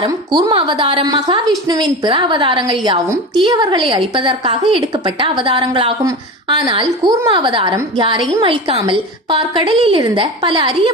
கூர்ம அவதாரம். மகாவிஷ்ணுவின் பிற அவதாரங்கள் யாவும் தீயவர்களை அழிப்பதற்காக எடுக்கப்பட்ட அவதாரங்களாகும். ஆனால் கூர்ம அவதாரம் யாரையும் அழிக்காமல் பார்க்கடலில் இருந்த பல அரிய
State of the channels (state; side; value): normal; both; correlation 0.27